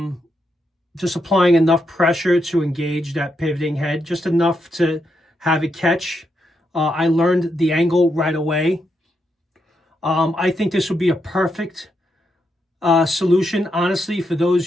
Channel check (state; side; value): normal; both; correlation 0.81